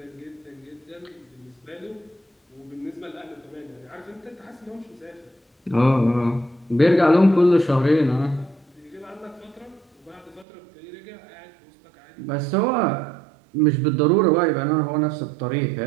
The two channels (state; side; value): drops out; left; at 10.5 s